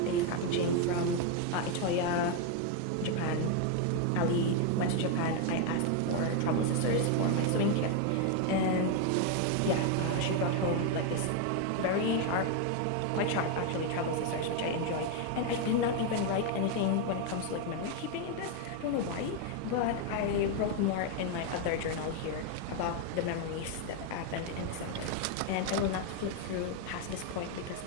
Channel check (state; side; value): different; both; correlation 0.01